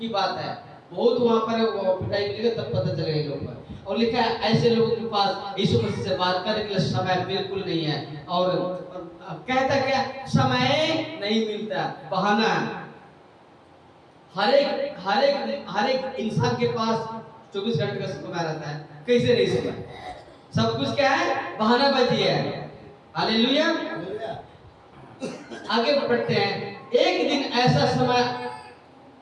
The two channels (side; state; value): both; identical; correlation 1.00